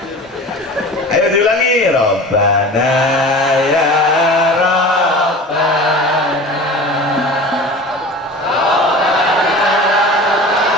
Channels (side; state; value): both; normal; correlation 0.37